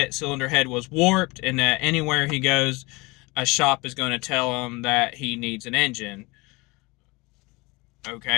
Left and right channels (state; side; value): quieter; right; 24.8 dB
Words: cylinder head was warped, and that anywhere he goes, a shop is going to tell him that he needs an engine.